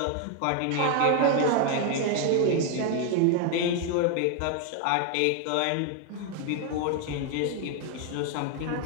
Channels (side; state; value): both; different; correlation 0.01